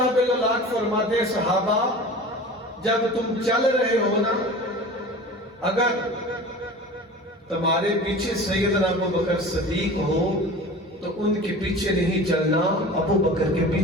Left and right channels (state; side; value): normal; both; correlation 0.37